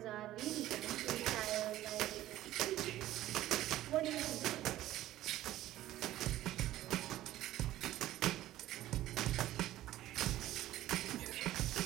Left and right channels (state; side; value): quieter; left; 14.5 dB